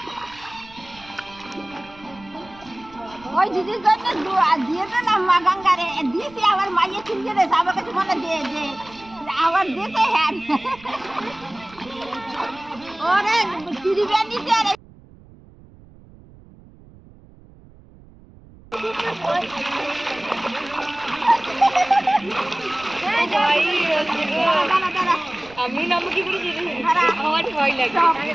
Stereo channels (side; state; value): right; noise; rumble, 23 dB below the sound